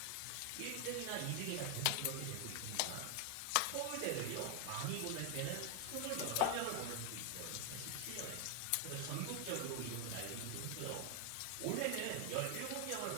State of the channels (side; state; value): both; different; correlation 0.00